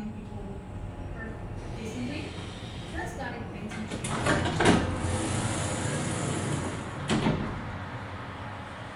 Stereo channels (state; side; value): identical; both; correlation 1.00